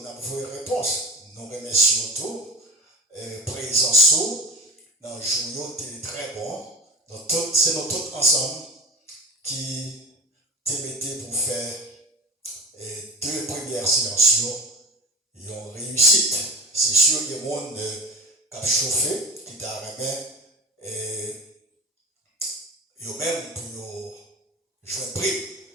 on a vos réponses nous remercions tout présence dans le jour très bon donc c'est nous tous ensemble qui te mettez pour faire deux premières séances, ils ont réussi. C'est sûr que le monde qui a chauffé, qui t'a remis, ils ont même pour jouer un prix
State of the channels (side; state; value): both; normal; correlation 0.33